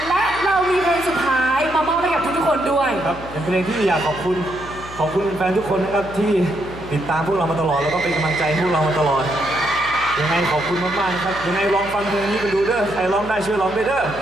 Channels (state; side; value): noise; left; hum, 15 dB below the sound